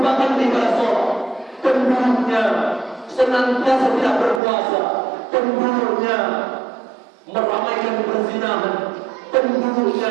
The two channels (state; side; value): drops out; left; at 4.4 s